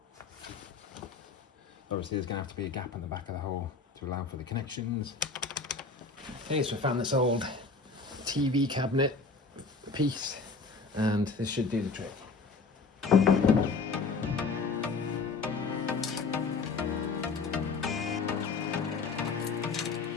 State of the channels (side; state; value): right; quieter; 4.3 dB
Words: Obviously there's going to have to be a gap in the back of the hole to allow for the connections. Okay, so I found this old TV cabinet piece, and this should do the trick.